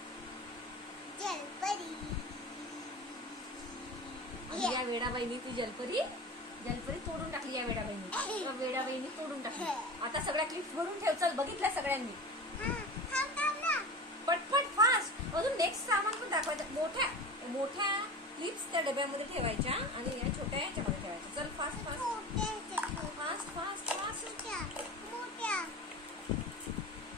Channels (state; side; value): normal; both; correlation 0.32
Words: जलपरी. या वेडाबाईनी ती जलपरी तोडून टाकली. या वेडाबाईनी तोडून टाकली. आता सगळ्या क्लिप्स भरून ठेव. चल, बघितल्या सगळ्यांनी. पटपट फास्ट. अजून नेक्स्ट सामान पण दाखवायचं. मोठ्या क्लिप्स त्या डब्यामध्ये ठेवायच्या आणि या छोट्या याच्यामध्ये ठेवायच्या. चल fast fast fast fast fast.